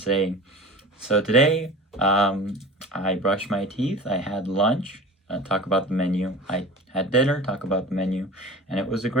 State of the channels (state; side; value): normal; both; correlation 0.36